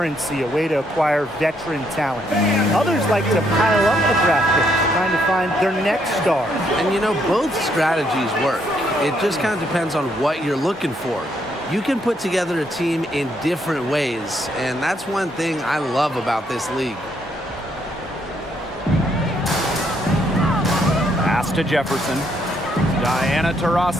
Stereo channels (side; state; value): both; normal; correlation 0.73